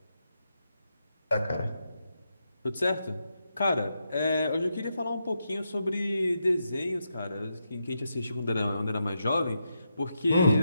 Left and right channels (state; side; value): inverted; both; correlation -0.84